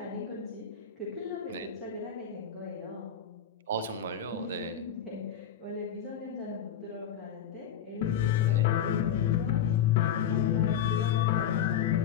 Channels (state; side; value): quieter; right; 8.8 dB